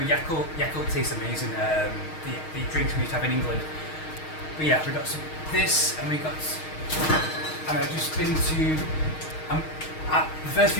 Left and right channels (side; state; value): right; late; 6.4 ms